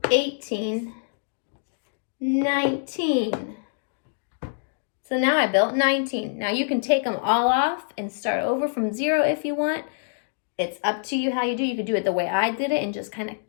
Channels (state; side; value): silent; right; digital silence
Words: 18, 19. So now I built 19. Now you can take them all off and start over from 0 if you want. It's up to you how you do. You could do it the way I did it and just kind of